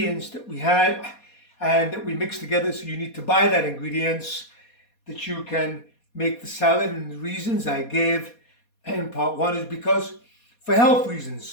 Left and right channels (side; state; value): right; late; 4.2 ms